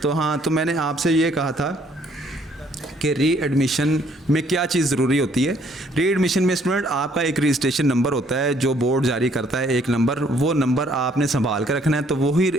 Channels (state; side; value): normal; both; correlation 0.64